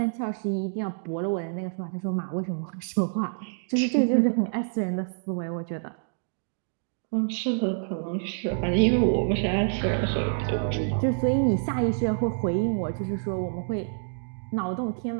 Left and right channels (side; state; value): left; silent; digital silence